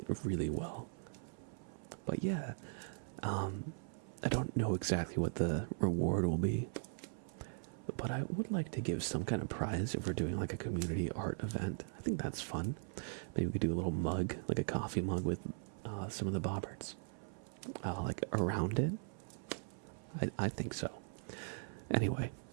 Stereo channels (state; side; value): silent; left; 51 dB below the other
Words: really well. But yeah, I don't know exactly what the reward will be, but I would like to give some kind of prize if we're doing like a community art event. I think that's fun. Maybe we could do a little mug, like a coffee mug with some of the Bobberts, like around it. I think so. Anyway,